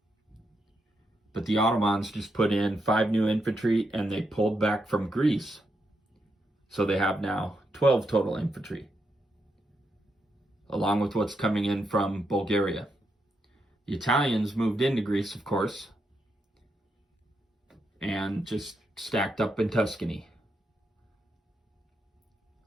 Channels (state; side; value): normal; both; correlation 0.82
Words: But the Ottomans just put in 5 new infantry and they pulled back from Greece. So they have now 12 total infantry, along with what's coming in from Bulgaria. The Italians moved into Greece, of course, and just stacked up in Tuscany.